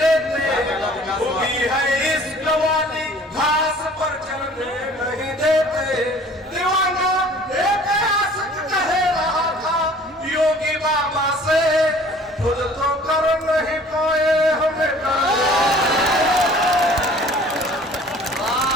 होगी है इश्क वाली घास पर चलने नहीं देते। दीवाना एक आशिक कह रहा था योगी बाबा से, खुद तो कर नहीं पाए हमें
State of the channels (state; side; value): normal; both; correlation 0.51